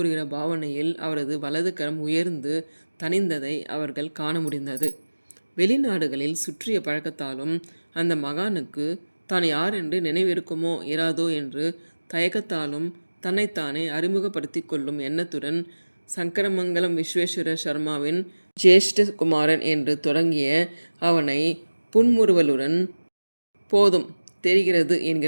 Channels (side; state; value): both; inverted; correlation -1.00